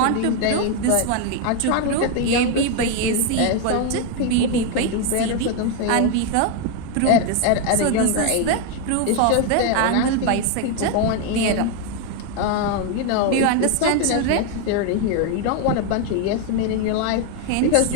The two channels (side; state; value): both; different; correlation 0.01